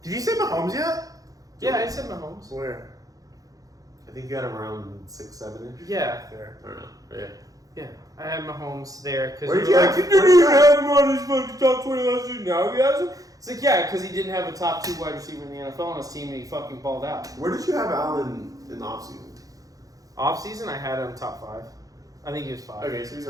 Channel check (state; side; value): late; left; 0.17 ms